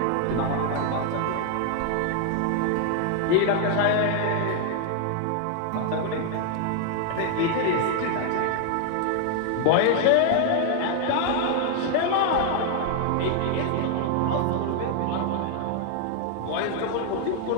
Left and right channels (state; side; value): different; both; correlation 0.00